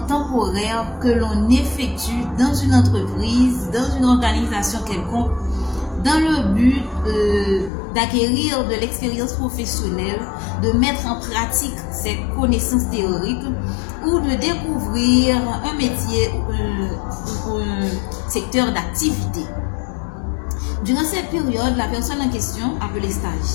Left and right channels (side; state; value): right; drops out; at 7.7 s